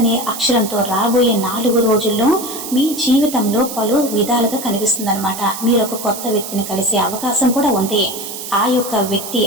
అక్షరంతో రాబోయే 4 రోజుల్లో మీ జీవితంలో పలు విధాలుగా కనిపిస్తుంది అనమాట. మీరు ఒక కొత్త వ్యక్తిని కలిసే అవకాశం కూడా ఉంది. ఆ యొక్క వ్యక్తి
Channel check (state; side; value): noise; right; hiss, 9 dB below the sound